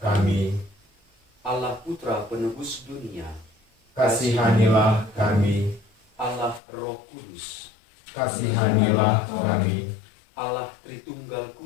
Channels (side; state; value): right; drops out; at 6.6 s